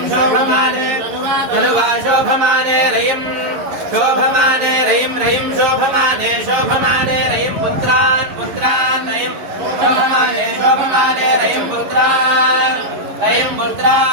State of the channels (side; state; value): left; late; 11 ms